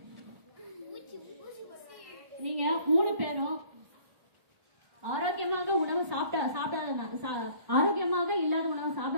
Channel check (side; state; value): left; late; 1.4 ms